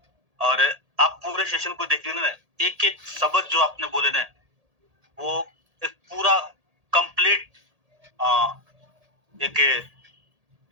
और आप पूरे सेशन को देखेंगे ना, एक एक शब्द जो आपने बोले ना, वो एक पूरा कंप्लीट एक,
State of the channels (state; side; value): late; left; 1.8 ms